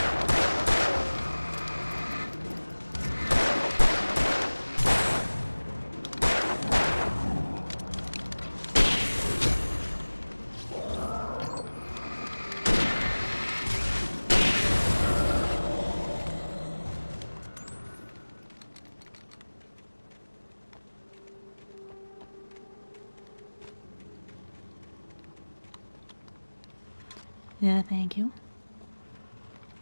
Yeah, thank you.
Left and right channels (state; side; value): inverted; both; correlation -1.00